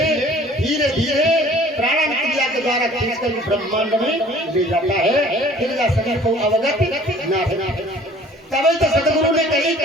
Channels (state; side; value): normal; both; correlation 0.52